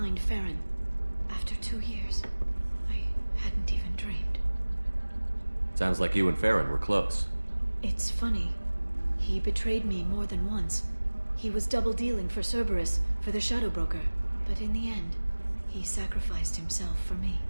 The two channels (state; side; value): inverted; both; correlation -1.00